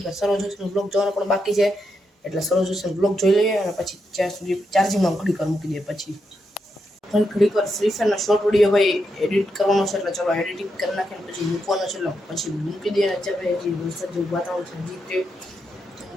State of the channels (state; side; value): normal; both; correlation 0.83